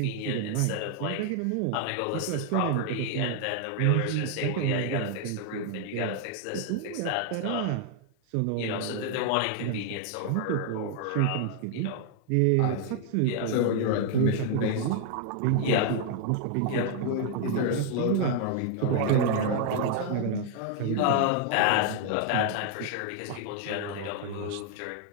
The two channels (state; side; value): different; both; correlation 0.00